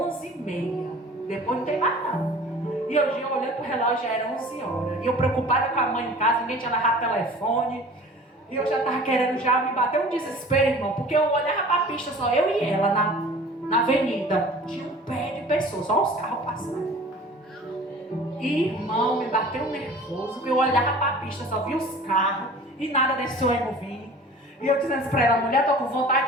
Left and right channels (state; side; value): normal; both; correlation 0.44